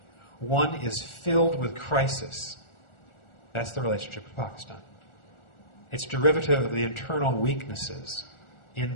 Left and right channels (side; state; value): right; late; 1.4 ms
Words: One is filled with crisis. That's the relationship with Pakistan. It's derivative of the internal weaknesses in